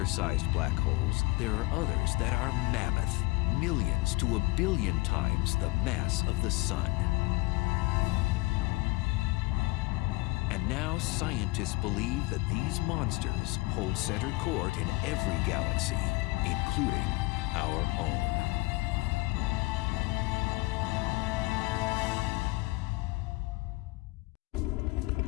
black holes, there are others that are mammoth, millions to a billion times the mass of the sun. And now scientists believe that these monsters hold center court in every galaxy, including our own.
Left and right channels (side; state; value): right; quieter; 23.0 dB